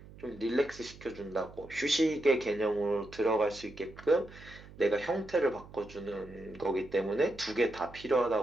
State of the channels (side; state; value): right; noise; hum, 19 dB below the sound